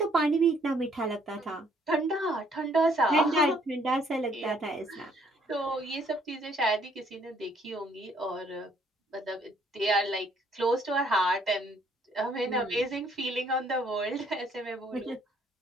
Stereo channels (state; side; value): normal; both; correlation 0.64